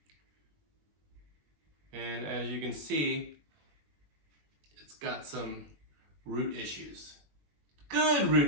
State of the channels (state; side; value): late; left; 21 ms